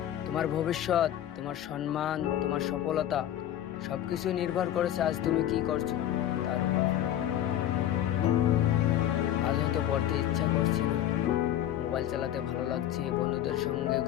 তোমার ভবিষ্যৎ, তোমার সম্মান, তোমার সফলতা সবকিছু নির্ভর করেছে আজ তুমি কি করছো তার উপর। আজ হয়তো পড়তে ইচ্ছা করছে না, মোবাইল চালাতে ভালো লাগছে, বন্ধুদের সঙ্গে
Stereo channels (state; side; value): quieter; right; 11.8 dB